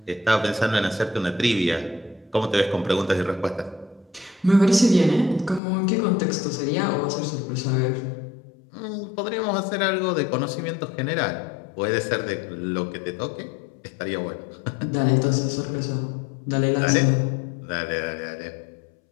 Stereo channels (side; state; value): right; drops out; at 5.6 s